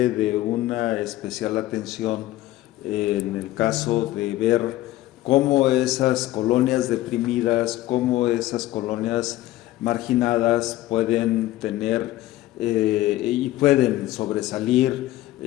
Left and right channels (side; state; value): right; quieter; 15.9 dB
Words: de una especial atención en el caso de ver cómo esas colonias deprimidas, cómo esas colonias marginadas pueden tener y pueden sobresalir